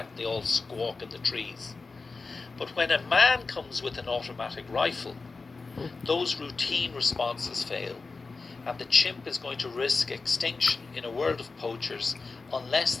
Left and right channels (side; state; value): right; quieter; 4.1 dB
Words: They all squawk in the trees. But when a man comes with an automatic rifle, those routine responses fail, and the chimp is going to risk extinction in a world of poachers unless